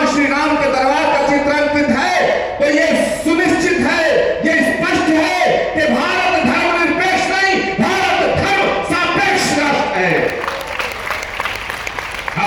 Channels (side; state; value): both; identical; correlation 1.00